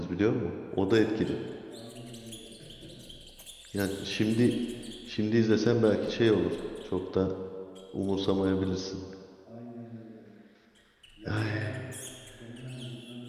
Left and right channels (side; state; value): both; identical; correlation 1.00